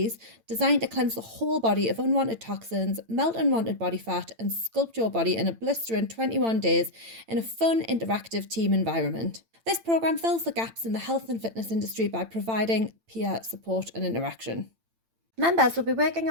designed to cleanse the whole body of unwanted toxins, melt unwanted body fat, and sculpt your body in a blistering 21 days in a fun, interactive team environment. This program fills the gaps in the health and fitness industry by providing peer support and interaction. Members will be working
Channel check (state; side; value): late; left; 8.9 ms